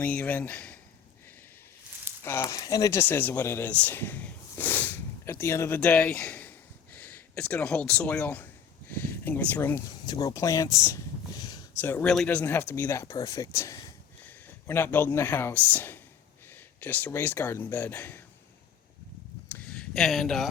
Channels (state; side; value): quieter; right; 7.7 dB